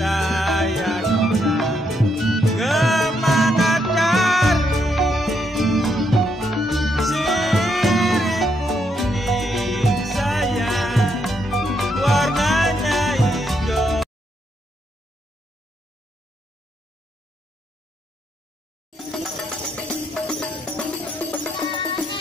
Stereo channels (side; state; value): both; normal; correlation 0.77